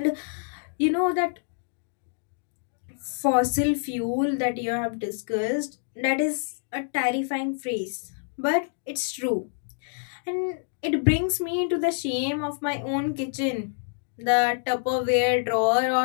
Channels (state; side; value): silent; right; digital silence